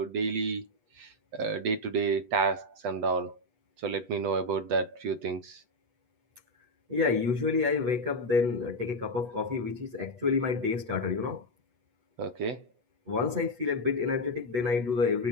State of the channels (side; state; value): left; late; 8.2 ms